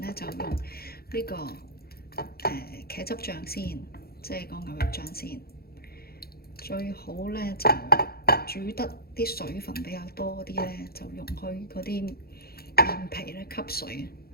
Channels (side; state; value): right; late; 0.45 ms